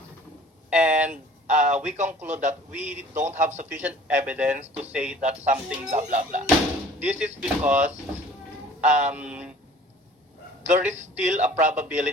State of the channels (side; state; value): both; normal; correlation 0.49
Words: and we conclude that we don't have sufficient evidence to say that something blah blah blah. This is because um, there is still a